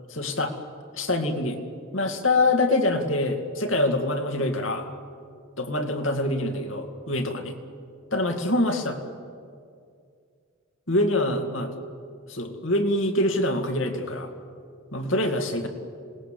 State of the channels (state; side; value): normal; both; correlation 0.05